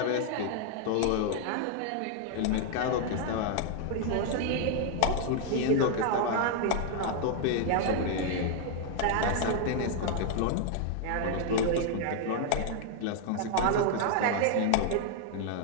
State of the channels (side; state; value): both; different; correlation 0.00